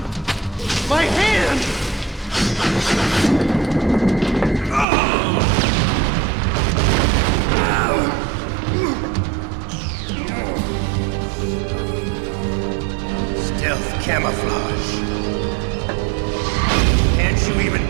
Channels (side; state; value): left; drops out; at 4.9 s